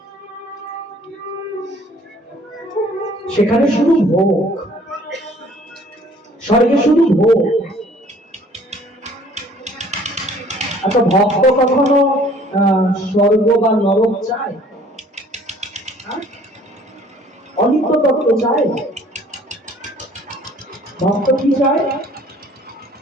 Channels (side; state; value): both; normal; correlation 0.55